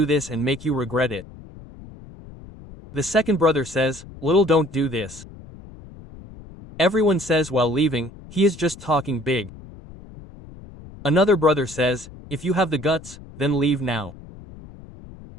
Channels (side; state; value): left; noise; rumble, 18 dB below the sound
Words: this and make you regret it. The second brother says, little don't do this. Everyone says while leaving, he is just talking big. Another brother says, if you have the guts, then leave now.